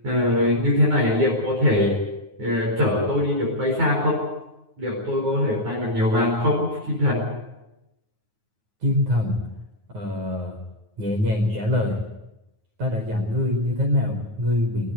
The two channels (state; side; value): late; left; 9.4 ms